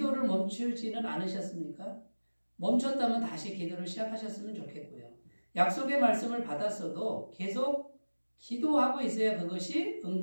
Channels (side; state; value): both; inverted; correlation -1.00